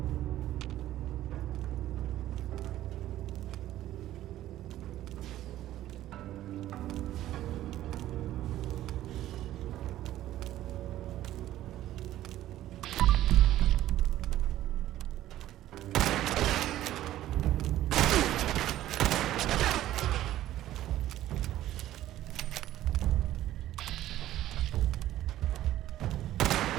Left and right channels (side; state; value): left; quieter; 13.7 dB